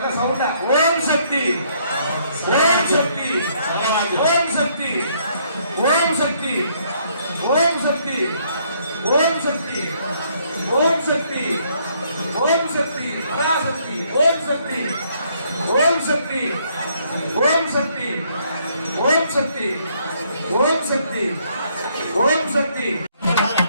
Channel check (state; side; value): inverted; both; correlation -0.68